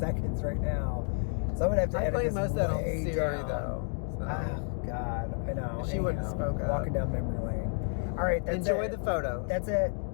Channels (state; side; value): silent; right; 57 dB below the other